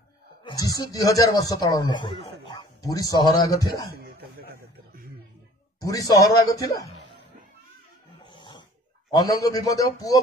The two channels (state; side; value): normal; both; correlation 0.50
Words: जीशु 2000 वर्ष तल लोक पूरी सहर आग थिला पूरी सहर आग थिला अनंग भीमदेव पुओ